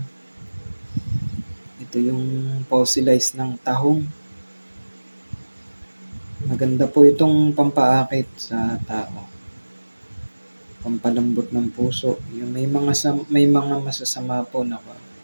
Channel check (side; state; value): both; inverted; correlation -1.00